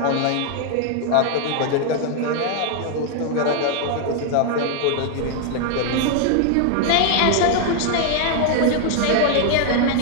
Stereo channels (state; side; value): different; both; correlation 0.00